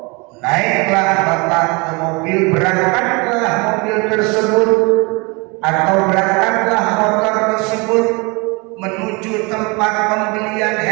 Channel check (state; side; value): quieter; left; 28.5 dB